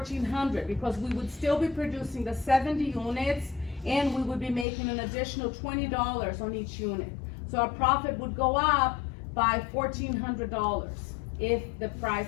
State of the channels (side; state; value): right; drops out; at 4.7 s